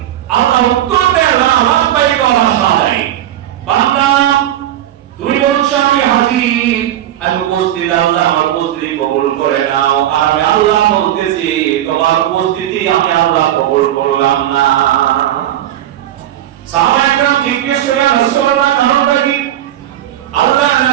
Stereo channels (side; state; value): left; quieter; 12.3 dB